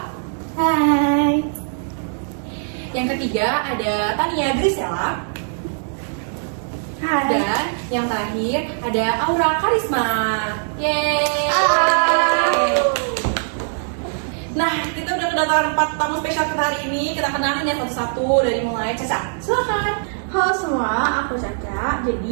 Hai. Yang ketiga ada Tania Grisela. Hai. Dan yang terakhir ada Aura Karisma. Yeay. Halo. Nah, kita udah kedatangan 4 tamu spesial kita hari ini. Kita kenalin ya satu-satu dari mulai Caca. Silakan. Halo semua, aku Caca.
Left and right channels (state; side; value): silent; left; digital silence